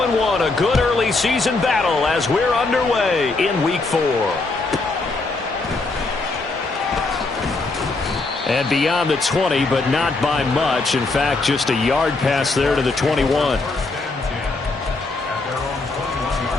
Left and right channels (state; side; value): quieter; right; 3.5 dB